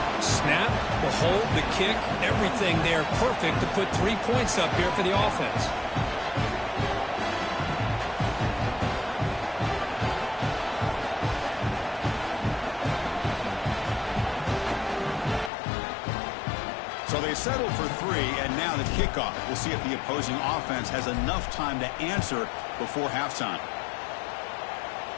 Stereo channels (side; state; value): right; drops out; at 15.5 s